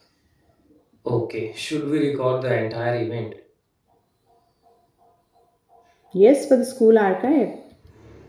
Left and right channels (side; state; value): both; identical; correlation 1.00